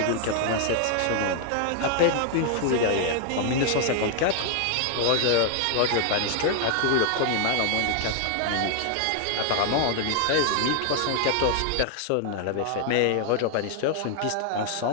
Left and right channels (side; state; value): both; different; correlation 0.00